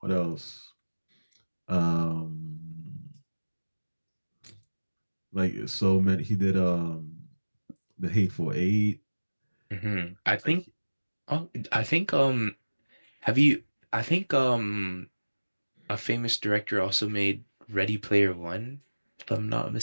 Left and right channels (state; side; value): inverted; both; correlation -1.00